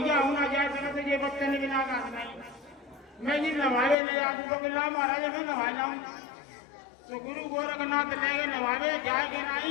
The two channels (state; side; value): drops out; right; at 4.0 s